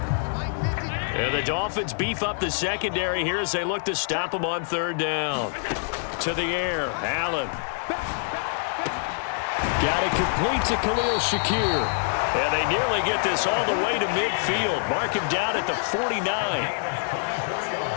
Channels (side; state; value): right; silent; digital silence